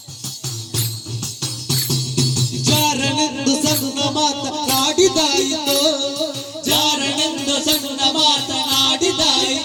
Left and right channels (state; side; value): identical; both; correlation 1.00